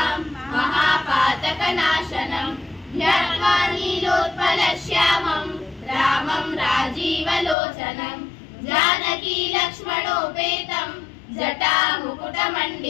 महापातकनाशनम् ध्यात्वा नीलोत्पलश्यामं रामं राजीवलोचनं जानकी लक्ष्मणोपेतं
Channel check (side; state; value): right; drops out; at 7.6 s